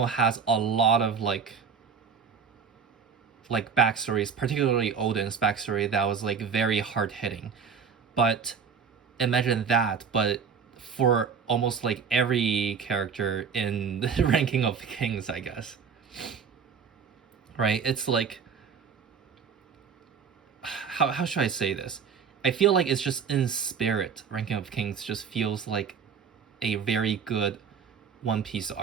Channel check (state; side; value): quieter; left; 6.4 dB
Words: has a lot of like backstories, particularly Odin's backstory, that was like very hard hitting. But imagine that, but for almost like every character in the Ranking of Kings, I guess. Right? It's like how should I say this? I feel like it's just in spirit. Ranking of Kings just feels like a very good One Piece